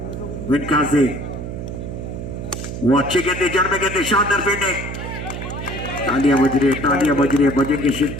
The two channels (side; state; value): right; noise; hum, 7 dB below the sound